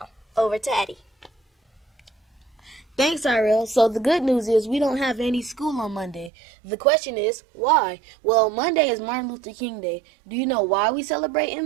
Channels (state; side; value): drops out; left; at 6.3 s